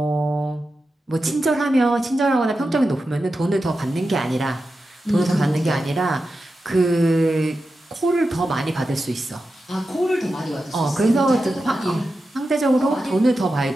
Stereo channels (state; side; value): normal; both; correlation 0.91